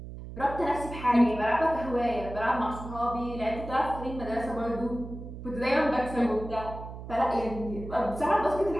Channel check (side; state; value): right; noise; hum, 11 dB below the sound